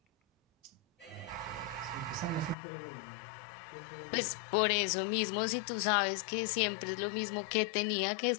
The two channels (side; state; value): right; drops out; at 2.6 s